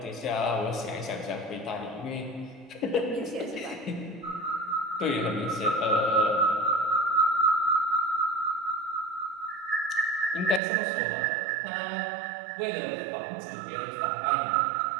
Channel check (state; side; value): drops out; left; at 10.6 s